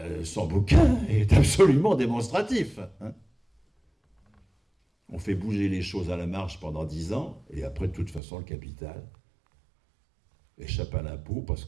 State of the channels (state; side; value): drops out; left; at 8.2 s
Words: son bouquin est absolument démonstratif. Hein. On fait bouger les choses à la marche pendant 10 ans, et après, de toute façon, le capital échappe à l'impôt parce